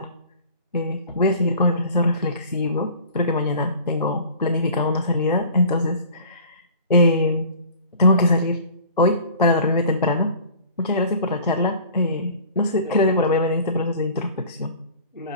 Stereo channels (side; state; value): both; inverted; correlation -0.45